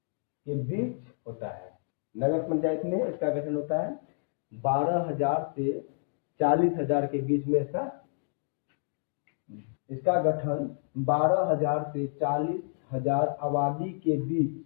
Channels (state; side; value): silent; right; digital silence